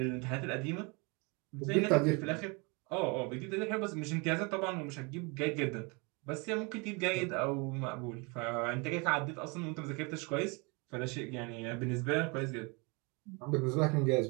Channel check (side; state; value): left; quieter; 30.1 dB